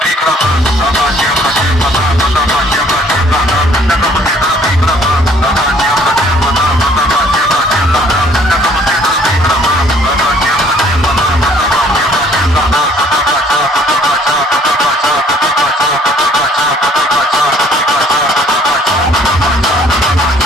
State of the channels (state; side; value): normal; both; correlation 0.59